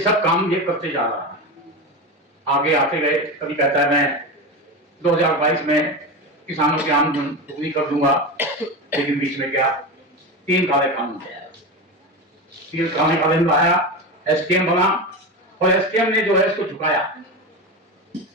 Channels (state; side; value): normal; both; correlation 0.21